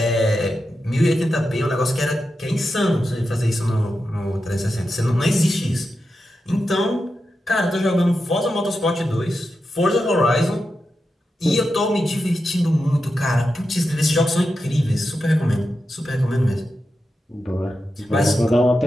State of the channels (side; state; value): both; normal; correlation 0.89